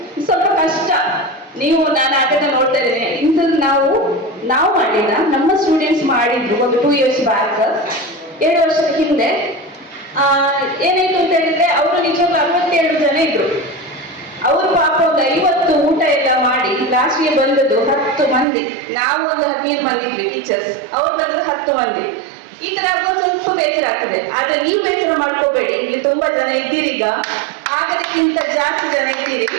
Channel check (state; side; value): drops out; left; at 18.4 s